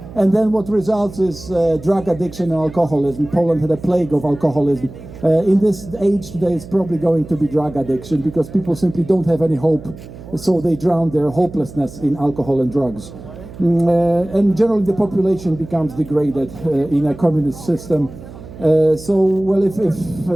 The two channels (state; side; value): noise; right; hum, 16 dB below the sound